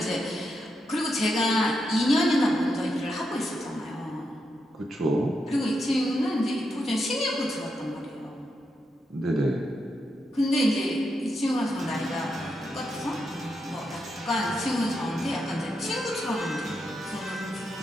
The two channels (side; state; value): both; normal; correlation 0.84